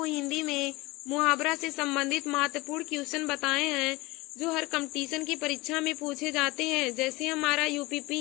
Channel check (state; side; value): quieter; right; 22.2 dB